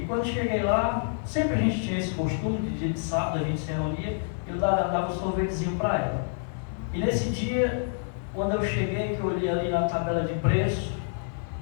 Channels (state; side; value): silent; right; 60 dB below the other